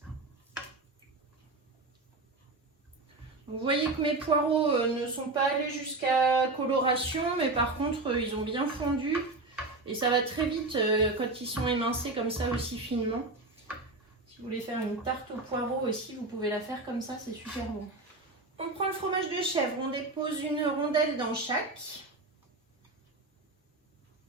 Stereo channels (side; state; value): left; quieter; 3.2 dB